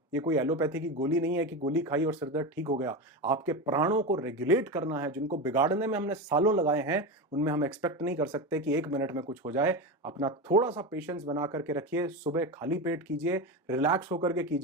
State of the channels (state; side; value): normal; both; correlation 0.20